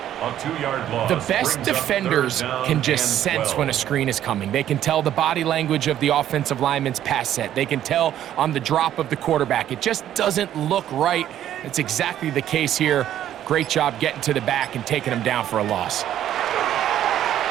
A 2-yard loss. The best defenders can just sense when a screen is coming. They can tell the body language of the offensive lineman's pass set. They can tell on the drop of the quarterback. It just doesn't look right. It's exactly the case here. Great job getting to the back and taking him down for a loss.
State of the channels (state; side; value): quieter; left; 11.5 dB